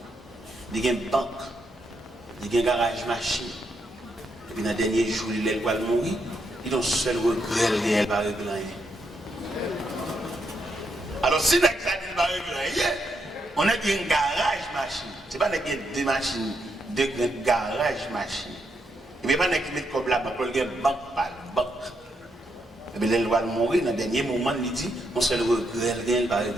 il y a une banque, il y a un garage machine. Et puis dans le dernier jour, il va mourir, il a un seul regret, il va régler rien. Alors si il va régler rien, on a un garage machine. Ce n'est pas deux machines, deux garages machine. Et puis pas qui met comme là, il y a une banque par banque. Et puis il va mourir, dans le dernier moment, il dit, on seul regret, il va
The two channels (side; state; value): both; normal; correlation 0.80